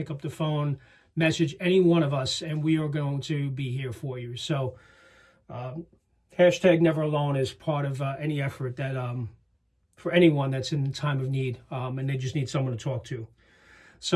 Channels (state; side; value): identical; both; correlation 1.00